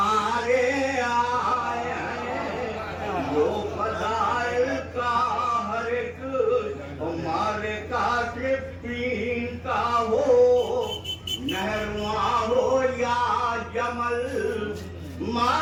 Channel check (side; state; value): both; identical; correlation 1.00